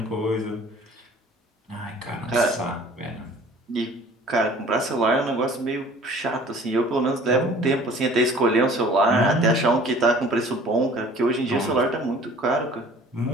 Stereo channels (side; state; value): both; normal; correlation 0.50